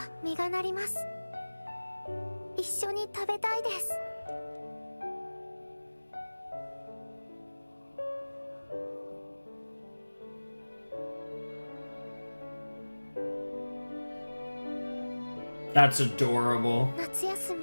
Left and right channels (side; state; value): both; inverted; correlation -1.00